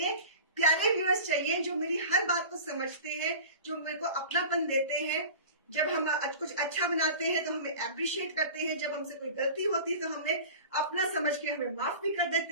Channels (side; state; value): both; inverted; correlation -0.37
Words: प्यारे व्यूअर्स चाहिए, जो मेरी हर बात को समझते हैं, जो मेरे को अपनापन देते हैं। जब हम कुछ अच्छा बनाते हैं तो हमें अप्रिशिएट करते हैं, जब हमसे कोई गलती होती है तो हमें अपना समझ के हमें माफ भी कर